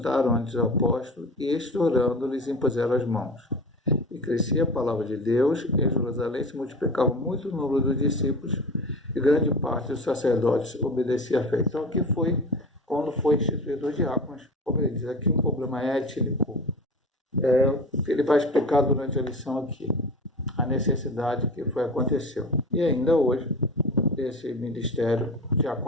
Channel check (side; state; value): both; normal; correlation 0.33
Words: ante os apóstolos, e estourando lhes impuseram as mãos. E crescia a palavra de Deus, e em Jerusalém se multiplicava muito o número dos discípulos, e grande parte dos sacerdotes obedecia à fé. Então aqui foi quando foi instituído os diáconos, como ele diz aqui, um problema étnico. Ele vai explicar durante a lição aqui a necessidade que aconteceu. E ainda hoje, esse ministério